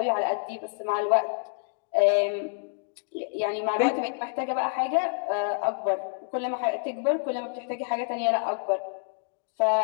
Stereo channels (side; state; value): right; silent; digital silence